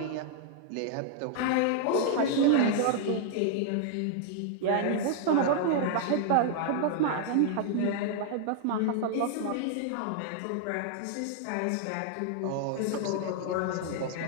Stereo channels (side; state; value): both; different; correlation -0.01